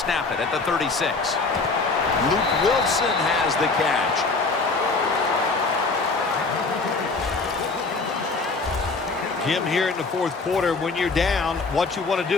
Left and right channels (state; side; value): quieter; right; 3.9 dB